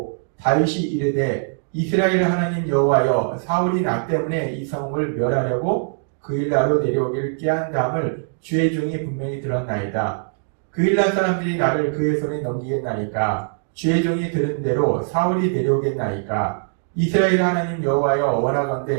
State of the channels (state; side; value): silent; left; digital silence